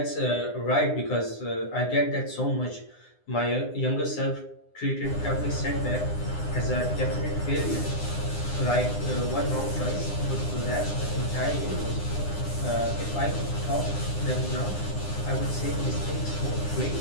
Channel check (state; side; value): late; right; 9.8 ms